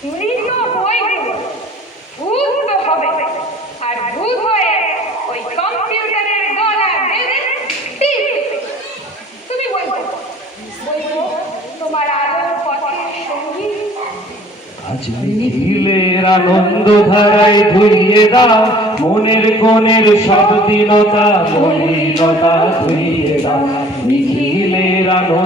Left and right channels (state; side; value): normal; both; correlation 0.51